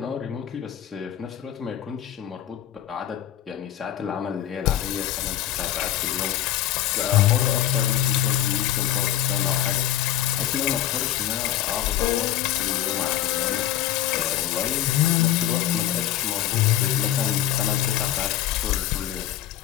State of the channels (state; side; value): quieter; right; 11.9 dB